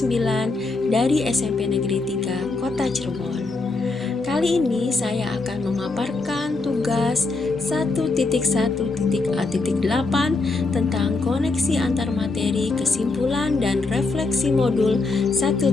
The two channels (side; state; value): right; quieter; 3.6 dB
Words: dari SMP Negeri 3 Kota Cirebon. Kali ini saya akan memaparkan tugas 1.1.A.8 tentang koneksi antar materi, kesimpulan, dan refleksi modul